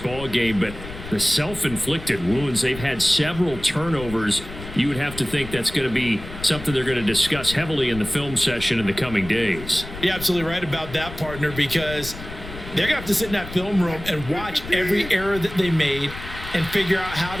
game, but the self-inflicted wounds, they've had several turnovers. You would have to think that's going to be something they're going to discuss heavily in the film session in the coming days. You're absolutely right about that, partner, because they're going to have to sit in that film room and watch every error that they made and figure out how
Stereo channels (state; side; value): noise; left; rumble, 12 dB below the sound